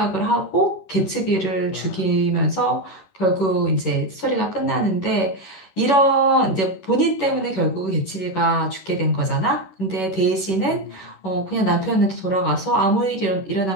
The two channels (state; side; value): late; right; 11 ms